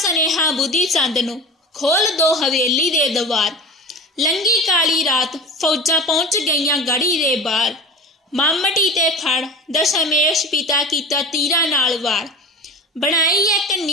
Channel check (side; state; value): both; normal; correlation 0.33